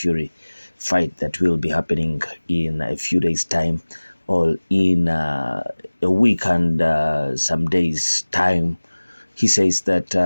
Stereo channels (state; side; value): inverted; both; correlation -1.00